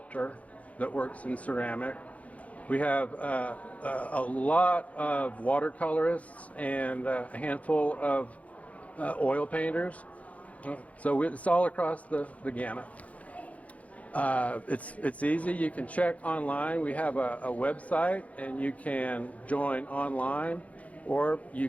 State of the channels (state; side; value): late; right; 0.067 ms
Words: that works in ceramic. We have a lot of watercolorists and a handful of oil painters. So it's all across the gamut. It's easy. You can check online. We have a website, and you can join online, or